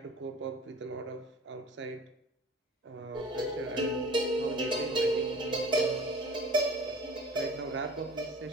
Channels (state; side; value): normal; both; correlation 0.43